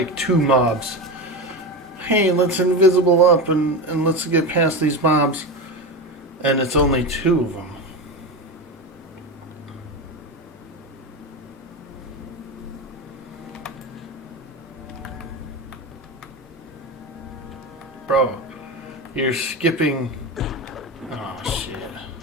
2 mobs. Hey, let's invisible up and let's get past these mobs. And it's only 2 of them. Bro, you're skipping... Oh, shit.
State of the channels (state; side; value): normal; both; correlation 0.20